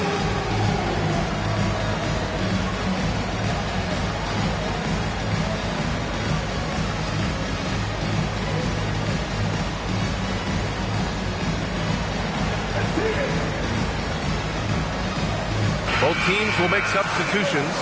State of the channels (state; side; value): identical; both; correlation 1.00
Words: Both teams will make substitutions.